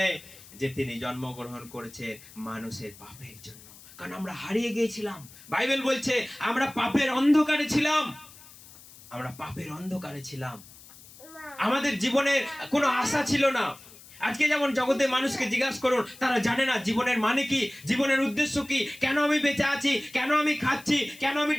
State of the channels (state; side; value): noise; left; hiss, 20 dB below the sound